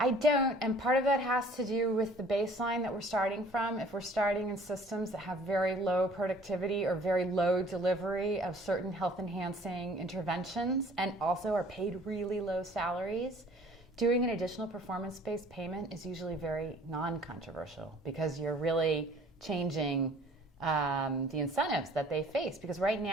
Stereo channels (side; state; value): both; normal; correlation 0.53